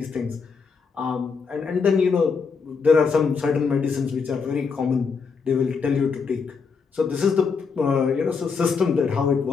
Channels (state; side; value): quieter; right; 5.3 dB